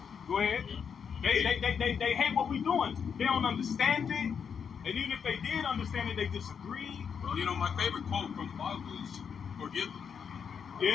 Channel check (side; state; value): right; quieter; 6.9 dB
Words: Go ahead. They hate what we're doing. They don't understand it. And even if they did understand it, they disagree. Well, you know, my favorite quote from the Bible is, forgive them.